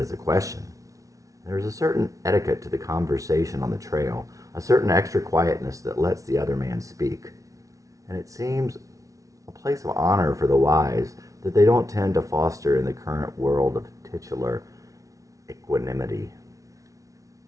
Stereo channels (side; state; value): left; late; 0.17 ms